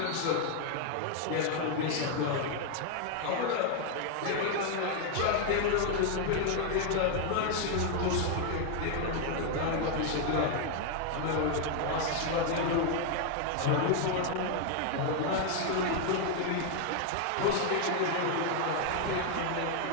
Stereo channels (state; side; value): different; both; correlation 0.00